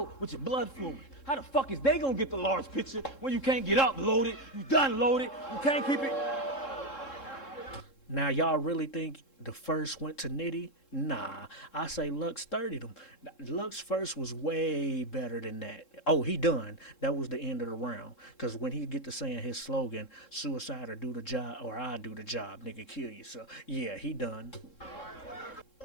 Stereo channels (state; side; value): late; right; 3.7 ms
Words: with your blood flowing. How the fuck is they gonna get the large picture when you can't get up loaded? You done loaded. You can't keep it. Now, y'all really think the first went to Nitty? Nah, I say Lux 30'd him. Lux first was way better than that. Oh, he done. That was the end of the round. Because when he get to saying his slogan, suicide or do the job, or I do the job, nigga, kill you. So, yeah, he done.